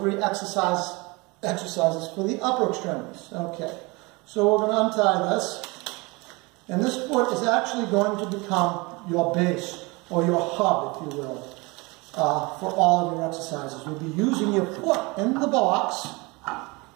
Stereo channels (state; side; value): quieter; left; 25.8 dB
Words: exercises for the upper extremities. Okay, So we're going to untie this. And this foot is actually going to become your base, or your hub, if you will, for all of your exercises. You'll be using your foot in the box